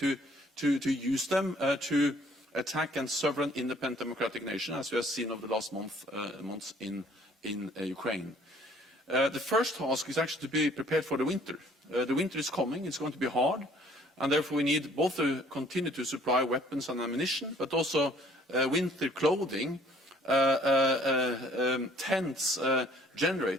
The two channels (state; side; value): normal; both; correlation 0.58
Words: use them to attack a sovereign, independent, democratic nation, as we have seen over the last months in Ukraine. The first task is actually to be prepared for the winter. The winter is coming, it's going to be hard, and therefore we need both to continue to supply weapons and ammunition, but also winter clothing, tents,